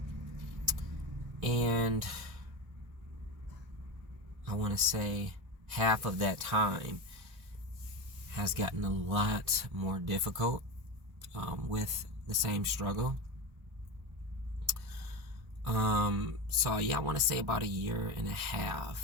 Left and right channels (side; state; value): left; late; 1.2 ms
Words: And I want to say half of that time has gotten a lot more difficult with the same struggle. So yeah, I want to say about a year and a